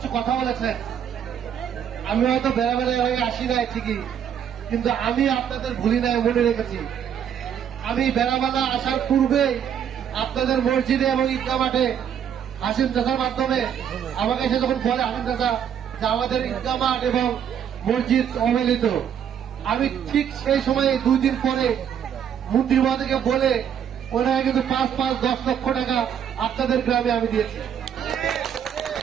কথা বলেছেন। আমি হয়তো বেড়াবেলায় হয়ে আসি নাই ঠিকই, কিন্তু আমি আপনাদের ভুলি নাই, মনে রেখেছি। আমি বেড়াবেলা আসার পূর্বেই আপনাদের মসজিদে এবং ঈদগাহ মাঠে হাসিম চাচার মাধ্যমে আমাকে এসে যখন বলে হাসিম চাচা যে আমাদের ঈদগাহ মাঠ এবং মসজিদ অবহেলিত, আমি ঠিক সেই সময়ে 2 দিন পরে মন্ত্রী মহোদয়কে বলে ওনারা কিন্তু 5-10 লক্ষ টাকা আপনাদের গ্রামে আমি দিয়েছি।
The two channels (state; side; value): quieter; left; 8.8 dB